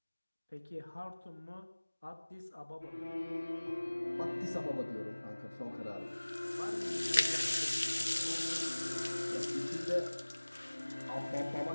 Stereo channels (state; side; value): inverted; both; correlation -1.00